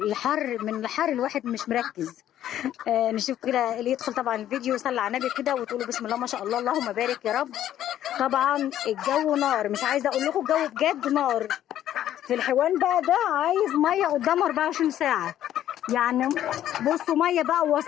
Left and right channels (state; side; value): quieter; right; 11.8 dB